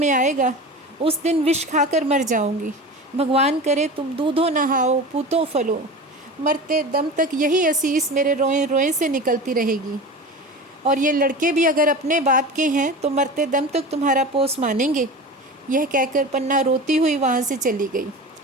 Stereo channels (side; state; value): both; normal; correlation 0.32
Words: आएगा उस दिन विष खाकर मर जाऊंगी। भगवान करे तुम दूधो नहाओ पूतो फलो। मरते दम तक यही असीस मेरे रोए रोए से निकलती रहेगी। और ये लड़के भी अगर अपने बाप के हैं तो मरते दम तक तुम्हारा पोस मानेंगे। यह कहकर पन्ना रोती हुई वहाँ से चली गई।